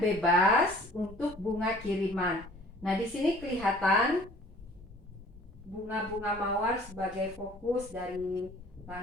bebas untuk bunga kiriman. Nah, di sini kelihatan bunga-bunga mawar sebagai fokus dari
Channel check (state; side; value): normal; both; correlation 0.52